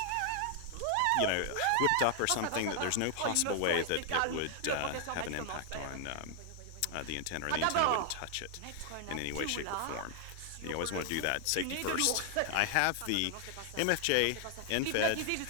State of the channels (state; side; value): different; both; correlation 0.00